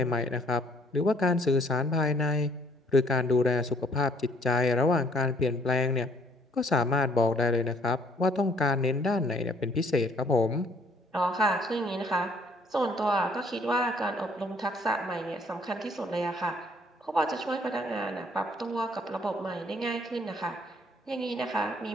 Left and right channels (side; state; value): both; normal; correlation 0.62